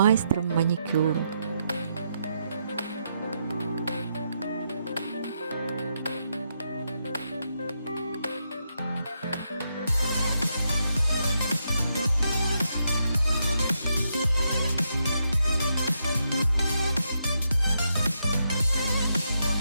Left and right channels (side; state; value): both; inverted; correlation -0.80